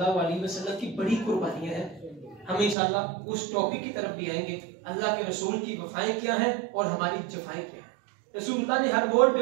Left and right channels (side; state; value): left; drops out; at 2.8 s